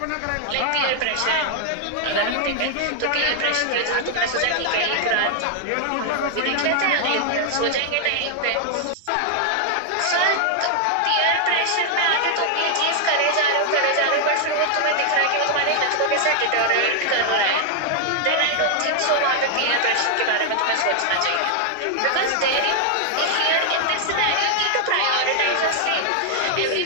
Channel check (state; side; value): different; both; correlation 0.00